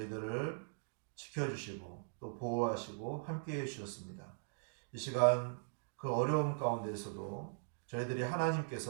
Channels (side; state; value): left; silent; digital silence